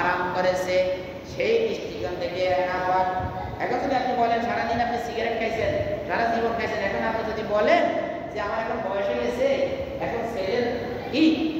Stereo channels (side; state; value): both; identical; correlation 1.00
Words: করেছে, সেই দৃষ্টিকোণ থেকে নাপাক। এখন যদি আপনি বলেন সারাদিন আপনি সিগারেট খাইছেন, সারা জীবন খাইছেন, এখন আপনি যদি বলেন যে আমার এখন বয়স হয়ে গেছে, এখন